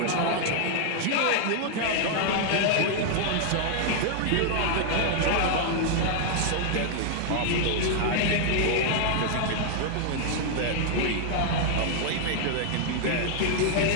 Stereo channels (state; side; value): different; both; correlation 0.00